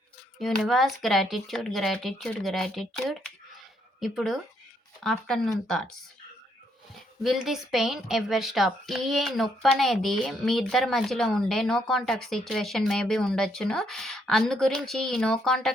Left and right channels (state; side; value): normal; both; correlation 0.73